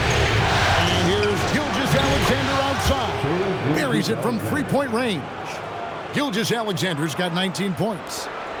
And here's Gilgeous-Alexander outside. Buries it from three-point range. Gilgeous-Alexander's got 19 points.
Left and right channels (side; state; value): both; identical; correlation 1.00